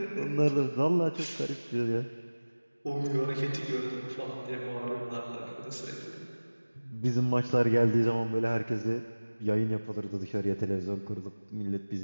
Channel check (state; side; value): inverted; both; correlation -1.00